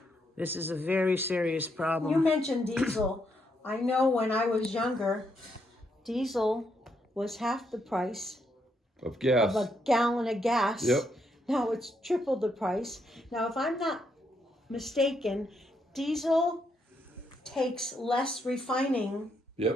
This is a very serious You problem. mentioned diesel. I know when I was younger, diesel was half the price Of of gas. a gallon of gas. Yep. Now it's triple the price. Now, if I'm not mistaken, diesel takes less refining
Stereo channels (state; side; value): normal; both; correlation 0.77